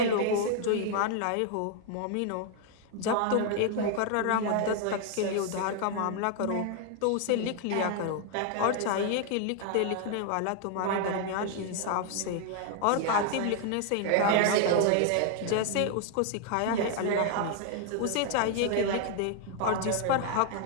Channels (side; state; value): both; different; correlation 0.00